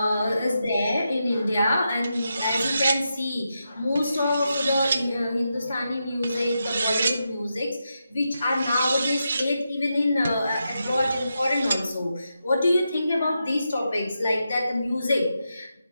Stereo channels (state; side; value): inverted; both; correlation -0.86